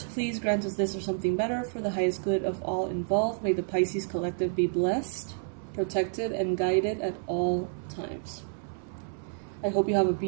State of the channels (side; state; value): left; silent; 58 dB below the other